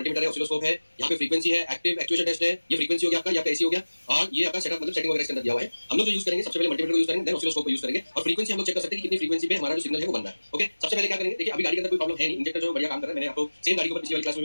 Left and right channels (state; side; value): inverted; both; correlation -1.00